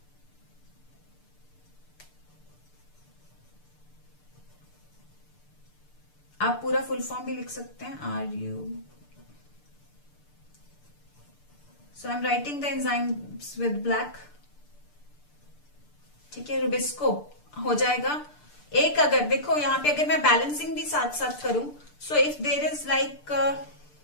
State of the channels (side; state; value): right; late; 6.8 ms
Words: आप पूरा फुल फॉर्म भी लिख सकते हैं, so I am writing the enzymes with black. ठीक है, रुबिस्को हो जाएगा. एक अगर देखो यहाँ पे अगर मैं बैलेंसिंग भी साथ साथ करूं, so if there is like